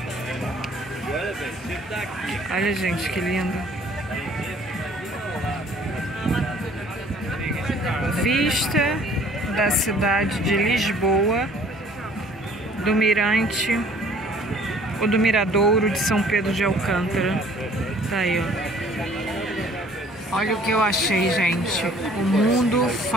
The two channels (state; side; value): normal; both; correlation 0.55